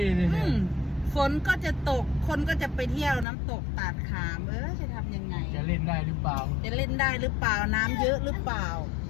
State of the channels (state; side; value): drops out; right; at 3.2 s